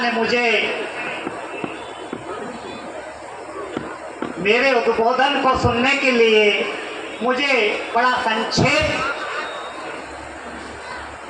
मुझे मेरे उद्बोधन को सुनने के लिए मुझे बड़ा संक्षेप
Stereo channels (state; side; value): identical; both; correlation 1.00